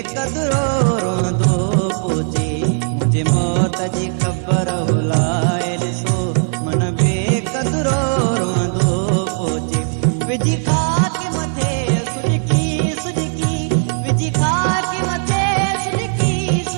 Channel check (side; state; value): left; silent; digital silence